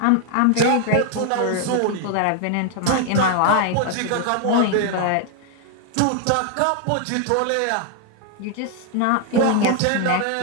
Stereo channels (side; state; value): both; different; correlation 0.00